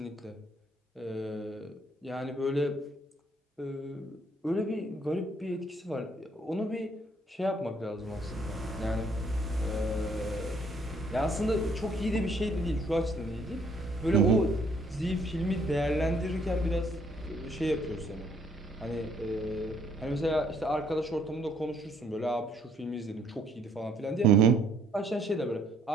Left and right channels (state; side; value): normal; both; correlation 0.65